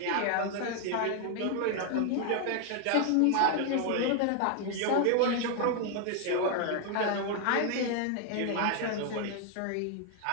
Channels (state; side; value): different; both; correlation 0.00